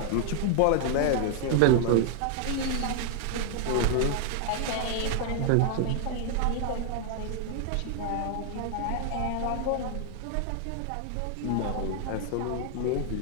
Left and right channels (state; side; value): different; both; correlation 0.00